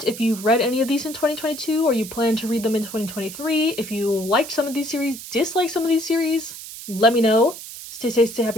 if you've read any of these in 2022 or you plan to read them in 2023. If you liked some of these series, disliked some of these series, let me know. Stay safe, stay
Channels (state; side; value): noise; right; hiss, 12 dB below the sound